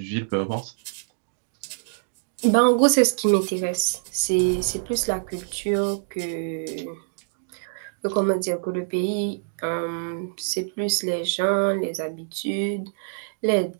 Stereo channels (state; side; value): silent; left; digital silence